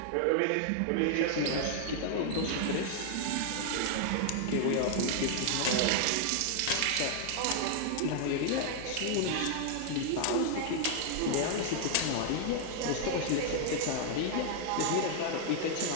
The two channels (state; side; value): different; both; correlation 0.00